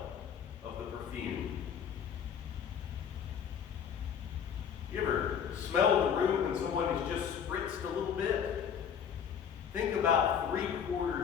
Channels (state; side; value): quieter; right; 7.9 dB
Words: of the perfume. You ever smell the room when someone has just spritzed a little bit? Think about